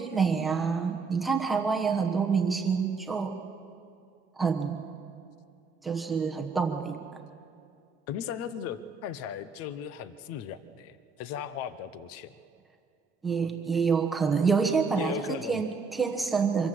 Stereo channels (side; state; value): left; quieter; 4.4 dB